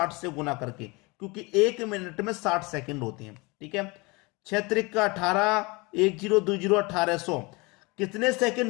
से गुना करके, क्योंकि 1 मिनट में 60 सेकंड होते हैं। ठीक है, 6 त्रिक का 18, 1020 1800। कितने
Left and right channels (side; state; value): right; quieter; 26.1 dB